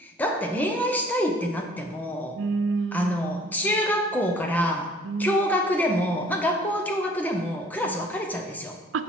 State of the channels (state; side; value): normal; both; correlation 0.55